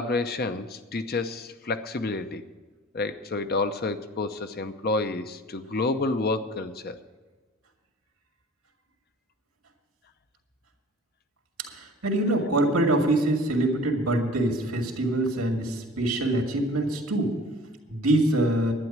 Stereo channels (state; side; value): normal; both; correlation 0.46